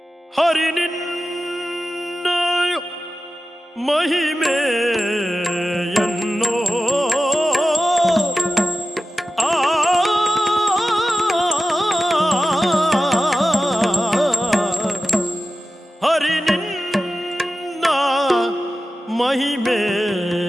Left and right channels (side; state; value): both; normal; correlation 0.94